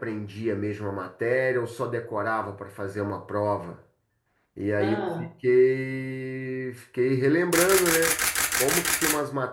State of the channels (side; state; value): both; identical; correlation 1.00